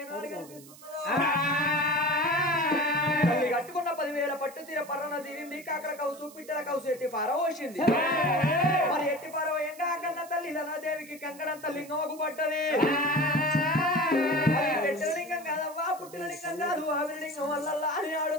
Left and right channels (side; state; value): right; noise; hiss, 20 dB below the sound